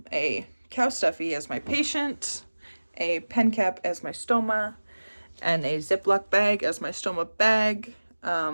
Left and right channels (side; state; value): both; inverted; correlation -1.00